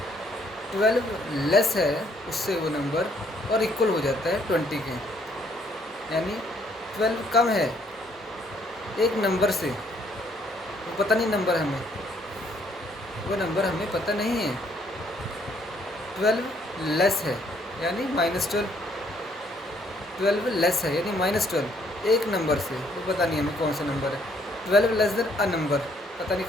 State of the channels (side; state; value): both; normal; correlation 0.66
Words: 12 लेस है उससे वो नंबर, और इक्वल हो जाता है 20 के, यानी 12 कम है एक नंबर से, वो पता नहीं नंबर हमें, वो नंबर हमें पता नहीं है, 12 लेस है यानी -12, 12 लेस है यानी -12 एक नंबर से, वो पता नहीं हमें कौन सा नंबर है। 12 लेस देन अ नंबर, पता नहीं